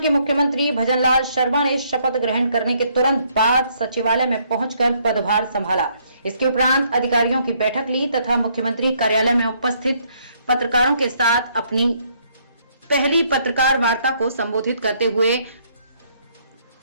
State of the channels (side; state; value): both; inverted; correlation -0.69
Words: मुख्यमंत्री भजनलाल शर्मा ने शपथ ग्रहण करने के तुरंत बाद सचिवालय में पहुंचकर पदभार संभाला। इसके उपरांत अधिकारियों की बैठक ली तथा मुख्यमंत्री कार्यालय में उपस्थित पत्रकारों के साथ अपनी पहली पत्रकार वार्ता को संबोधित करते हुए